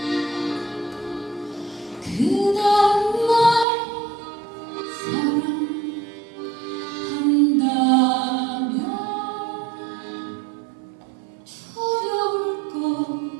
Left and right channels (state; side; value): drops out; left; at 3.7 s